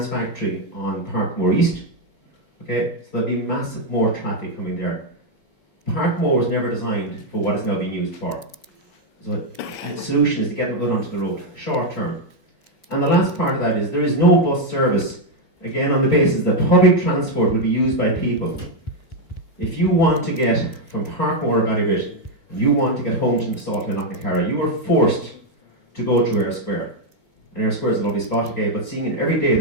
factory on Parkmore East. Okay, so there'll be massive more traffic coming there. Parkmore was never designed for what it's now being used for. So the solution is to get them out onto the road, short term. And the last part of that is there is no bus service, again on the basis that public transport will be used by people. If you want to get from Parkmore or Ballybit, and you want to get home to Salthill and Knocknacarra, you are forced to go through Eyre Square. And Eyre Square is a lovely spot, okay, but seeing it every day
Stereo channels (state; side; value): late; right; 4.8 ms